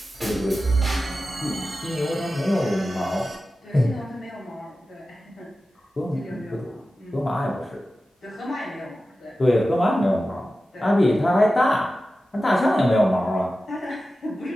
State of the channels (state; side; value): normal; both; correlation 0.94